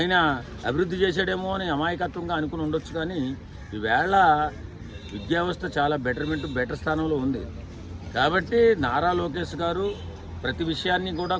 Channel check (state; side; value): identical; both; correlation 1.00